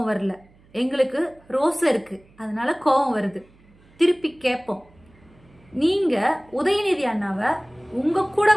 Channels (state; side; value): noise; right; hum, 29 dB below the sound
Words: வரல. எங்களுக்கு ரோசம் இருக்கு, அதனால கோபம் வருது. திருப்பி கேட்போம், நீங்க உதயநிதி அண்ணாவை உங்க கூட